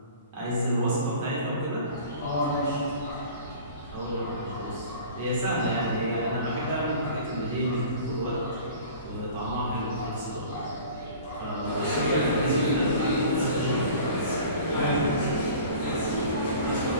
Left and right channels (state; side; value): inverted; both; correlation -0.43